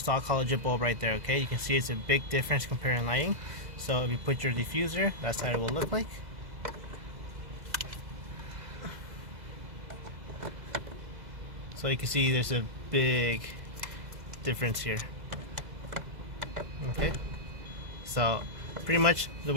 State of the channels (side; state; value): left; late; 2.0 ms